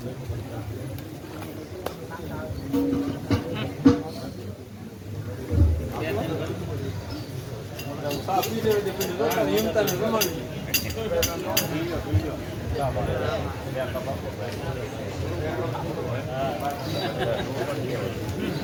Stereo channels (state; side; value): identical; both; correlation 1.00